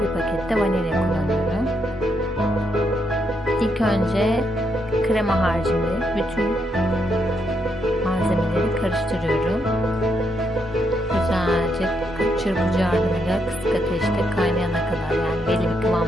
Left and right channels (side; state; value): both; normal; correlation 0.78